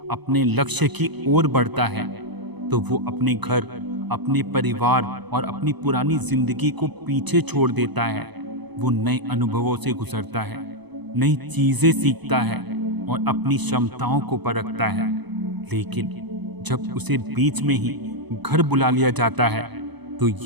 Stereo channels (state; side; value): late; left; 0.99 ms